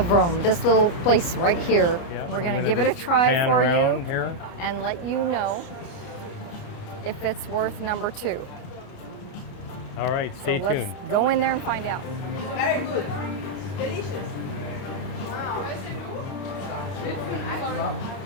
Rome. This little place right here. Yeah, we're going to give it a try for you here and let you know if it's worth number 2. All right, stay tuned. Let's go in there and find out. Very good. Delicious.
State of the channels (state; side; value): late; right; 29 ms